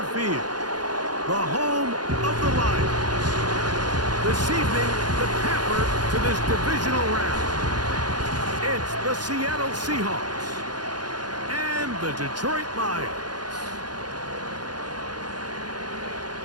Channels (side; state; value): left; late; 0.70 ms